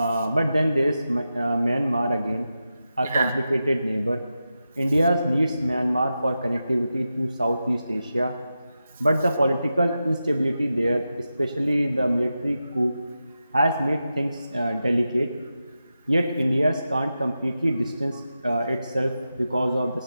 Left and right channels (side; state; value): both; inverted; correlation -0.91